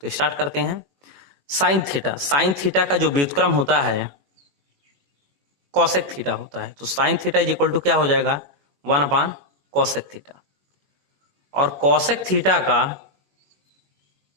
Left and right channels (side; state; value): left; late; 21 ms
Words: स्टार्ट करते हैं। साइन थीटा का जो व्युत्क्रम होता है कॉसेक थीटा होता है। तो sine theta is equal to क्या हो जाएगा 1 कॉसेक थीटा, और कॉसेक थीटा का